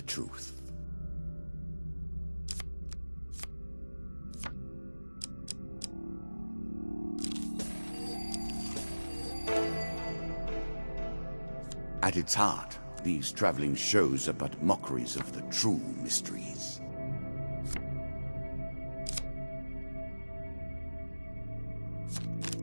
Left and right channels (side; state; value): both; inverted; correlation -1.00